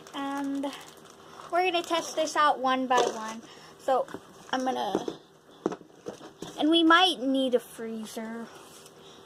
And we're going to test this out one by one. So I'm going to, and we might need a freezer.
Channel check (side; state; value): both; identical; correlation 1.00